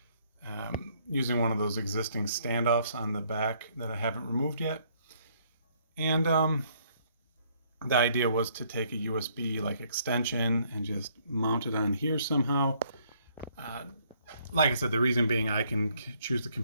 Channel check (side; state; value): both; inverted; correlation -0.66